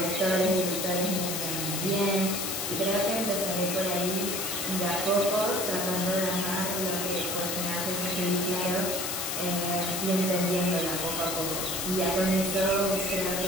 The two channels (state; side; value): noise; left; hiss, 2 dB below the sound